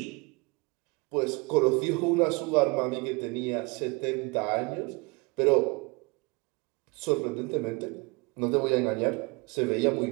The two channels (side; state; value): left; quieter; 28.8 dB